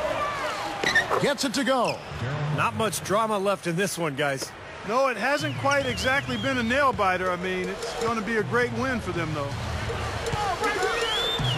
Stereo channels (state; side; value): identical; both; correlation 1.00